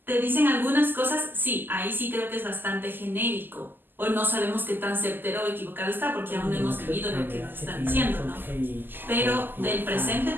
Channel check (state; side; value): late; left; 0.092 ms